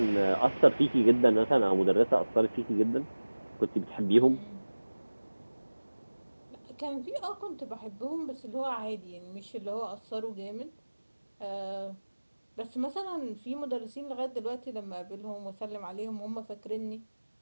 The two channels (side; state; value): both; inverted; correlation -1.00